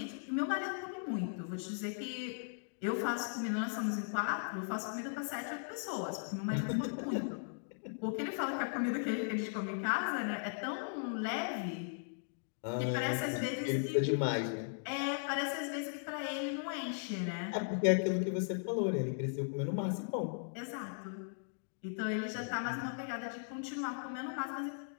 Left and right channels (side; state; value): right; silent; digital silence